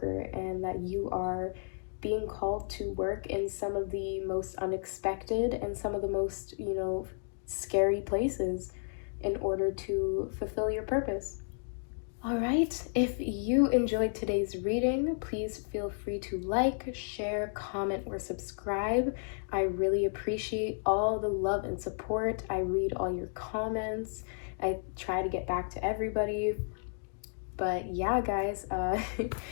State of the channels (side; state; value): right; silent; digital silence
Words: and that you are being called to work in some of the most unexpected and some of the most, you know, scary places in order to fulfill your purpose. All right, if you enjoyed today's reading, please feel free to like, share, comment, or subscribe. I really appreciate all the love and support. I read all your comments. I try to get back to everybody. But yeah, guys,